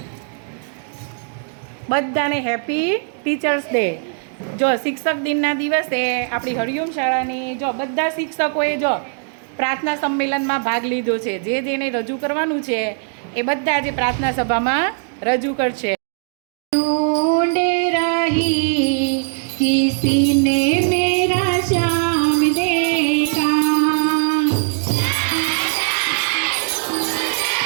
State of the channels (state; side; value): silent; left; 59 dB below the other